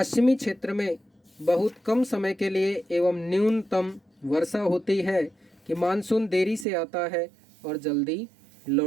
क्षेत्र में बहुत कम समय के लिए एवं न्यूनतम वर्षा होती है कि मानसून देरी से आता है और जल्दी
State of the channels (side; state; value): left; drops out; at 6.7 s